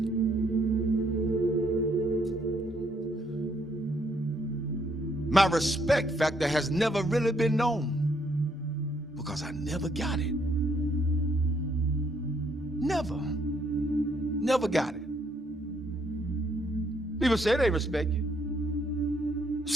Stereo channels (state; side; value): normal; both; correlation 0.70